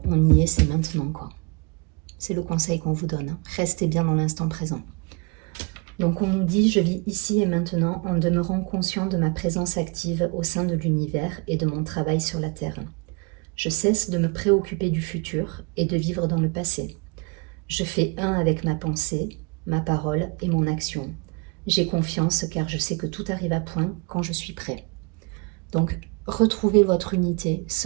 On y est, c'est maintenant, quoi. C'est le conseil qu'on vous donne. Restez bien dans l'instant présent. Donc on nous dit, je vis ici et maintenant en demeurant conscient de ma présence active au sein de l'univers et de mon travail sur la Terre. Je cesse de me préoccuper du futur et de vivre dans le passé. Je fais un avec ma pensée, ma parole et mon action. J'ai confiance car je sais que tout arrive à point quand je suis prêt. Donc, retrouvez votre unité,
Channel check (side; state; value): left; quieter; 30.8 dB